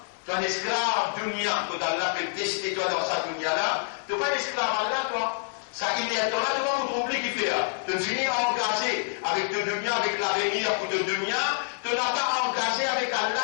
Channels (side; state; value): right; silent; 60 dB below the other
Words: tu es un esclave dunya, que Allah peut tester toi dans sa dunya là, tu n'es pas un esclave Allah, toi. Ça, il est là, tu vas vous trouver qui fait. Tu finis engagé avec te dunya, avec l'avenir pour te dunya, tu n'as pas engagé avec Allah